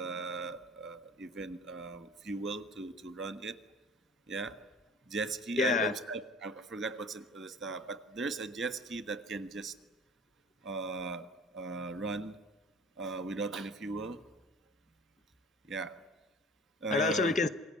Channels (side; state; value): both; normal; correlation 0.44